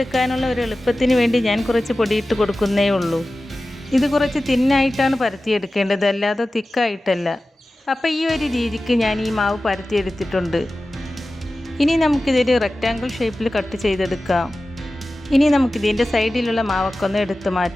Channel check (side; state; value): both; normal; correlation 0.95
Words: ഒരു എളുപ്പത്തിന് വേണ്ടി ഞാൻ കുറച്ച് പൊടിയിട്ട് കൊടുക്കുന്നേ ഉള്ളൂ. ഇത് കുറച്ച് തിന്നായിട്ടാണ് പരത്തിയെടുക്കേണ്ടത്, അല്ലാതെ തിക്കായിട്ടല്ല. അപ്പോൾ ഈ ഒരു രീതിക്ക് ഞാൻ ഈ മാവ് പരത്തിയെടുത്തിട്ടുണ്ട്. ഇനി നമുക്കിതൊരു റെക്റ്റാങ്കിൾ ഷേപ്പിൽ കട്ട് ചെയ്തെടുക്കാം. ഇനി നമുക്കിതിൻ്റെ സൈഡിലുള്ള മാവൊക്കെ ഒന്ന് എടുത്ത്